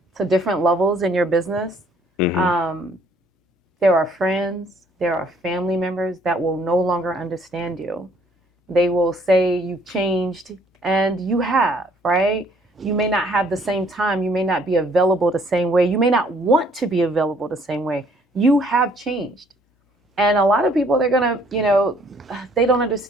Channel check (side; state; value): both; normal; correlation 0.62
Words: to different levels in your business, that? there are friends, there are family members that will no longer understand you. They will say you've changed, and you have, right? You may not have the same time. You may not be available the same way. You may not want to be available the same way. You have changed. And a lot of people, they're going to, they don't